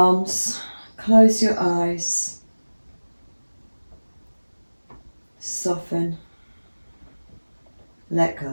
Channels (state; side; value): inverted; both; correlation -1.00